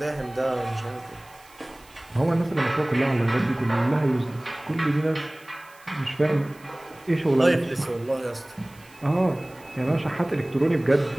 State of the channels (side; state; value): right; noise; hiss, 26 dB below the sound